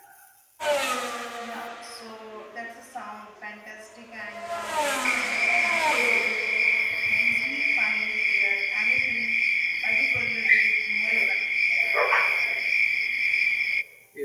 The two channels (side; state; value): both; identical; correlation 1.00